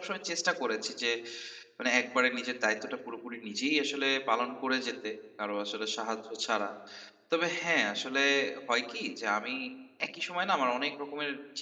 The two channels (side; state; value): both; identical; correlation 1.00